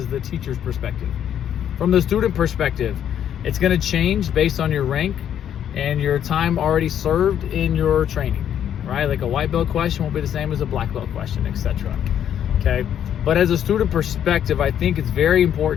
the teacher's perspective. From the student perspective, it's going to change based on your rank and your time already served in your training, right? Like a white belt question won't be the same as a black belt question, etc. Okay, but as a student perspective, I think it's very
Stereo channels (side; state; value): right; quieter; 9.8 dB